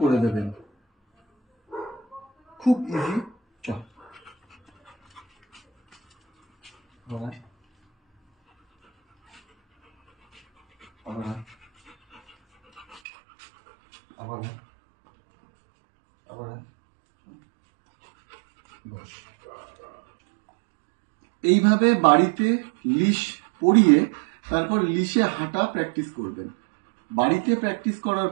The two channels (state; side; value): drops out; left; at 13.0 s